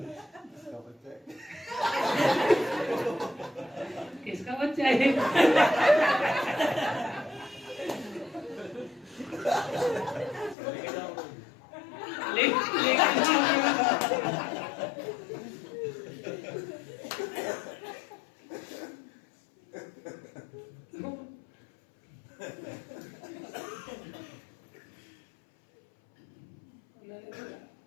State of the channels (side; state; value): right; drops out; at 10.6 s